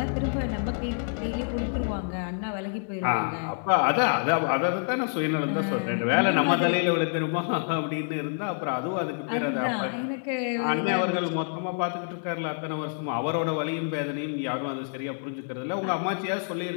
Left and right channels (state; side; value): silent; right; digital silence